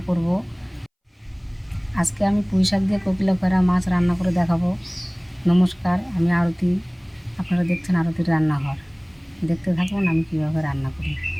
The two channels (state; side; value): identical; both; correlation 1.00